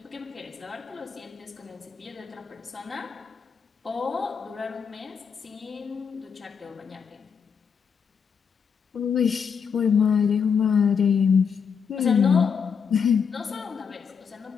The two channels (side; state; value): right; quieter; 6.5 dB